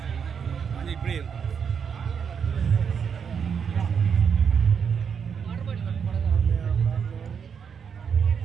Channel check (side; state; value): left; quieter; 6.9 dB